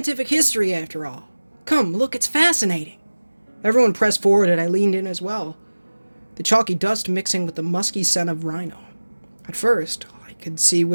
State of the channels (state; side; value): inverted; both; correlation -1.00